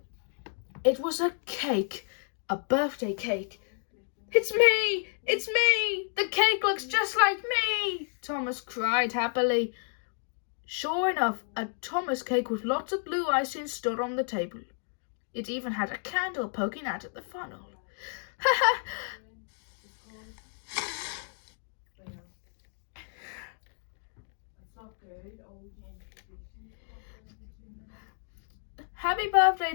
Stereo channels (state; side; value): silent; right; 57 dB below the other